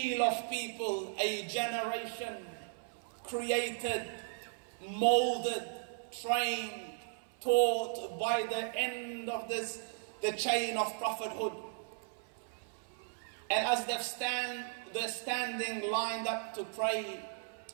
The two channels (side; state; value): left; silent; 54 dB below the other